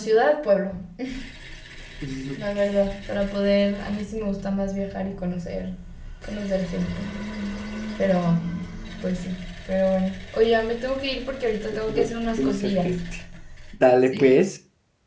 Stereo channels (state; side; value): identical; both; correlation 1.00